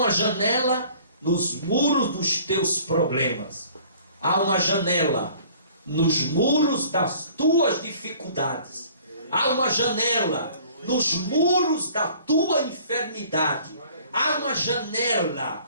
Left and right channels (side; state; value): both; inverted; correlation -0.52